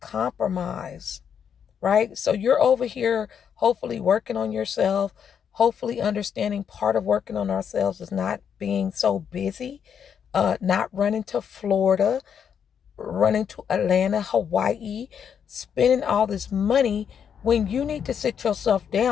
right? So you're over here hopefully working on yourself, hopefully understanding part of working on ourselves is not being so busy, not running to Florida, running to Atlanta, Hawaii, spending all this money when you need to sit yourself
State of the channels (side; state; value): right; quieter; 7.8 dB